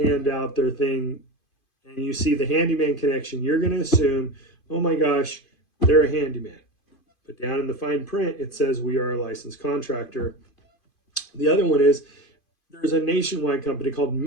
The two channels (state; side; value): late; right; 2.5 ms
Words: their thing, and you see the Handyman Connection, you're going to assume, oh my gosh, they're a handyman. But down in the fine print, it says we are a licensed contractor. The other one is there's a nationwide company called